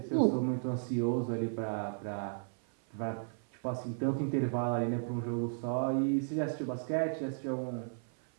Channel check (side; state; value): left; silent; 55 dB below the other